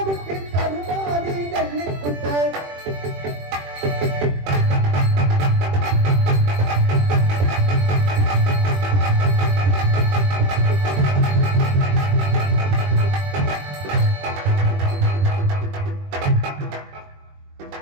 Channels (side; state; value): left; late; 21 ms